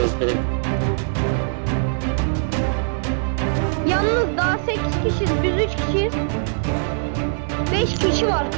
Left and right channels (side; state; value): left; silent; digital silence